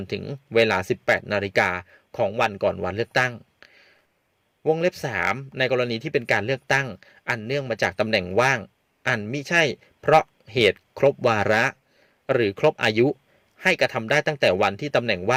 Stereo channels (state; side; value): identical; both; correlation 1.00